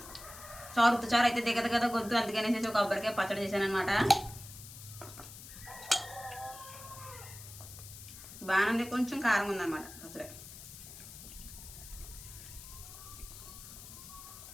చారు అయితే దిగదు కదా గొంతు, అందుకనేసి ఒక కొబ్బరికాయ పచ్చడి చేశాను అనమాట. బాగానే కొంచెం కారం ఉందన్నమాట పచ్చడి.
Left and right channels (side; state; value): left; noise; hiss, 14 dB below the sound